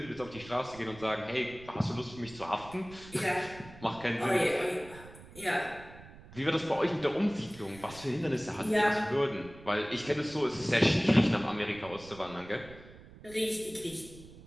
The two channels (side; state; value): right; noise; rumble, 18 dB below the sound